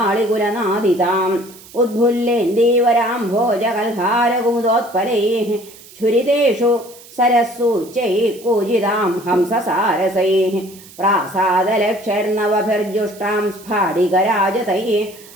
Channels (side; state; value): right; noise; hiss, 21 dB below the sound